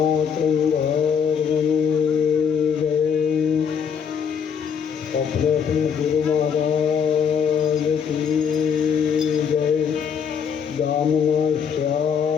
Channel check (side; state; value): right; quieter; 7.1 dB